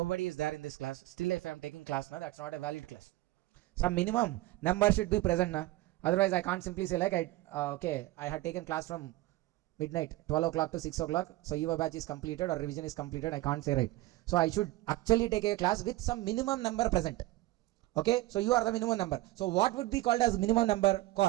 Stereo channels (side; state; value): left; quieter; 18.0 dB